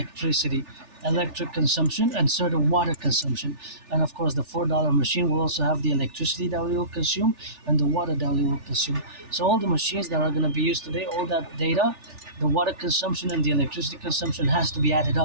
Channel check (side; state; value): left; late; 3.4 ms